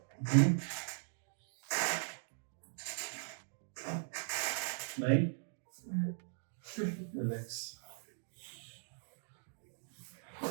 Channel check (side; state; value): left; silent; digital silence